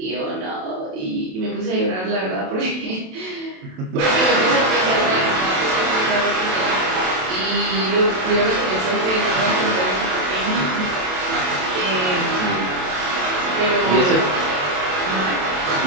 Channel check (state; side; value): late; left; 27 ms